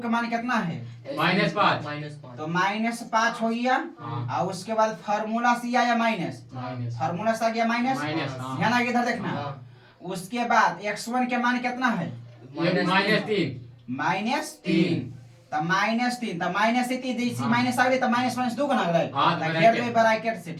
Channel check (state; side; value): identical; both; correlation 1.00